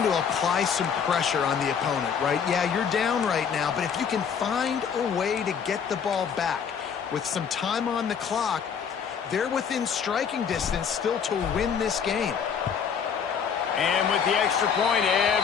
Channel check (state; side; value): quieter; right; 7.1 dB